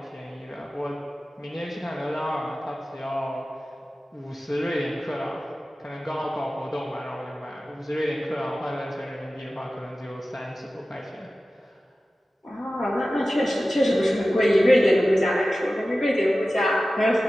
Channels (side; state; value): both; normal; correlation 0.95